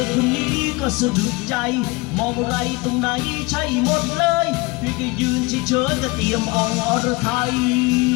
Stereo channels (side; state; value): right; quieter; 24.8 dB